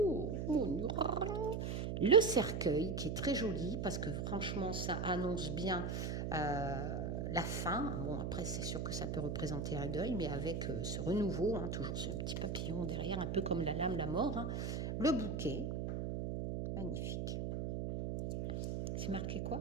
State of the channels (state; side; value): noise; right; hum, 2 dB below the sound